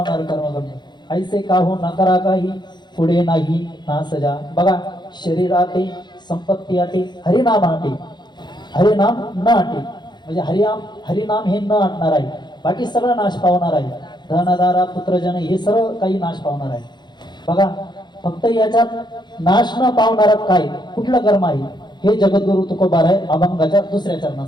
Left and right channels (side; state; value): right; late; 0.21 ms